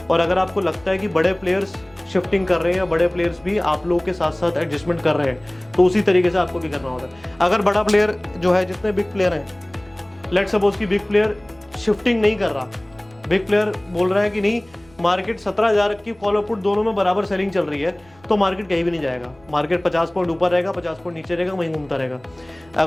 और अगर आपको लगता है कि बड़े प्लेयर्स शिफ्टिंग कर रहे हैं या बड़े प्लेयर्स भी आप लोगों के साथ साथ एडजस्टमेंट कर रहे हैं, तो उसी तरीके से आपको भी करना होता है। अगर बड़ा प्लेयर जो है, जितने बिग प्लेयर हैं, लेट्स सपोज कि बिग प्लेयर शिफ्टिंग नहीं कर रहा, बिग प्लेयर बोल रहा है कि नहीं, मार्केट 17,000 की कॉल और पुट दोनों में बराबर सेलिंग चल रही है, तो मार्केट कहीं भी नहीं जाएगा, मार्केट 50 पॉइंट ऊपर रहेगा, 50 पॉइंट नीचे रहेगा, वहीं घूमता रहेगा।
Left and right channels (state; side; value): noise; right; rumble, 29 dB below the sound